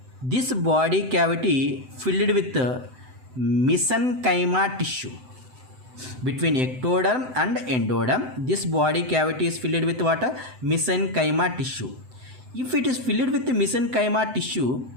This body cavity filled with mesenchyma tissue. Between ectoderm and endoderm, this body cavity is filled with what? Mesenchyma tissue. If it is filled with mesenchyma tissue,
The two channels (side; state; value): left; late; 7.9 ms